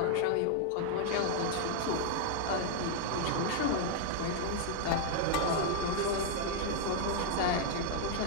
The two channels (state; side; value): different; both; correlation -0.01